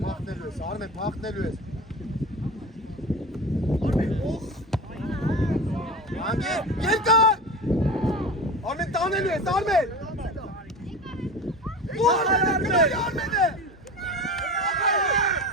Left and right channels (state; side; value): normal; both; correlation 0.30